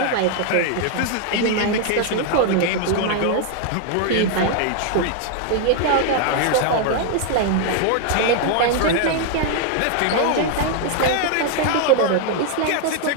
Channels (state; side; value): different; both; correlation 0.00